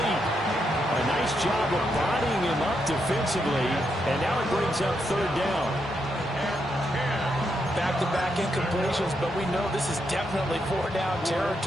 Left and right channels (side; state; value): both; normal; correlation 0.81